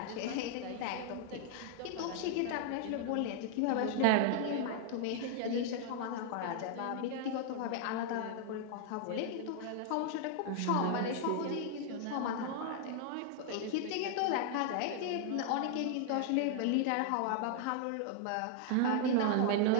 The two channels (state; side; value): different; both; correlation 0.00